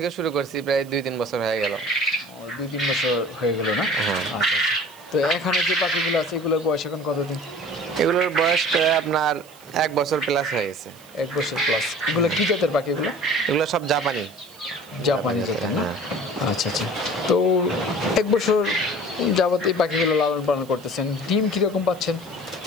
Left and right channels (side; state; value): right; noise; hiss, 24 dB below the sound